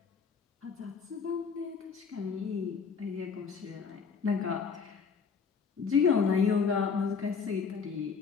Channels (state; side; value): quieter; right; 5.8 dB